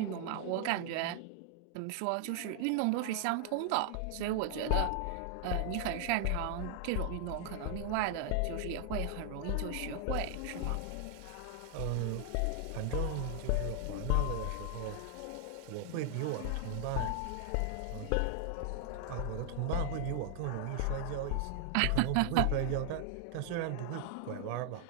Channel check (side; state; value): both; different; correlation 0.00